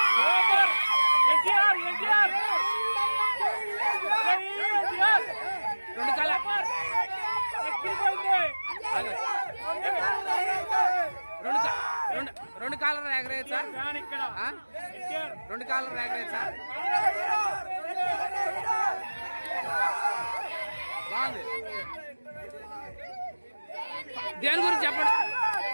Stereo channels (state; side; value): inverted; both; correlation -1.00